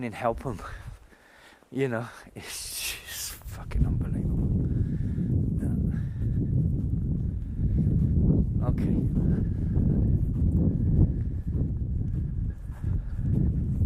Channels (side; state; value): both; identical; correlation 1.00